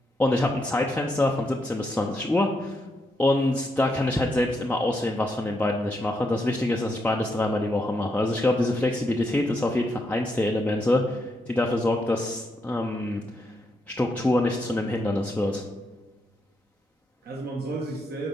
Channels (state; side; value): normal; both; correlation 0.80